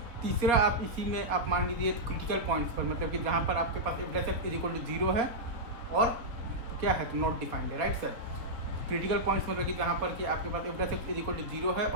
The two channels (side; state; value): left; late; 4.2 ms